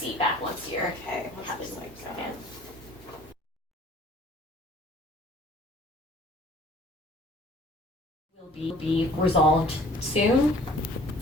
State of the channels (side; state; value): both; normal; correlation 0.52